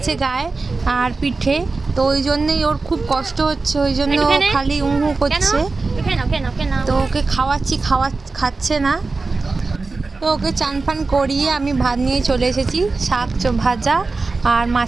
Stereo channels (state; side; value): quieter; left; 3.9 dB